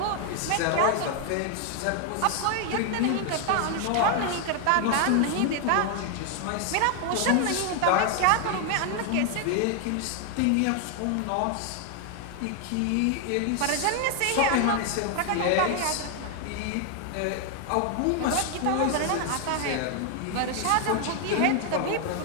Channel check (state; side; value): different; both; correlation 0.00